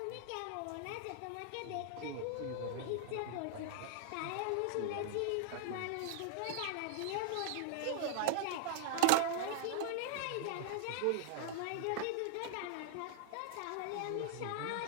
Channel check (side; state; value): both; different; correlation 0.00